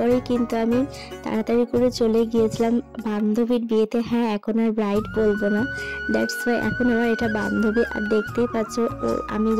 কিন্তু আমি তাড়াতাড়ি করে চলে গিয়েছিলাম বান্ধবী বান্ধবীর বিয়েতে, হ্যাঁ এখন আর ব্রাইড বলবো না, দ্যাটস ওয়াই এখন আমার এটা বান্ধবী। আর দেখতেই পাচ্ছ ও আমি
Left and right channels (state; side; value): identical; both; correlation 1.00